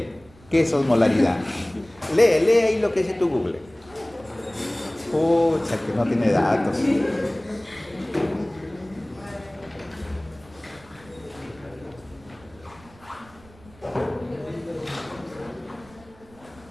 ¿Qué es osmolaridad? Lee ahí lo que dice tu Google. Pucha, que no tiene datos.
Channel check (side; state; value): right; noise; rumble, 25 dB below the sound